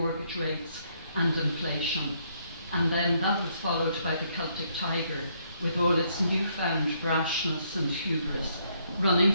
rates, and inflation. And then that was followed by the Celtic Tiger, with all its newfound brashness and hubris, running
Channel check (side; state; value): both; inverted; correlation -0.71